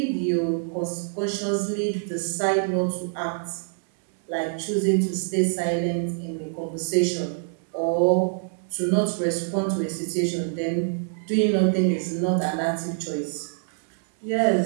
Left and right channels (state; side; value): silent; left; digital silence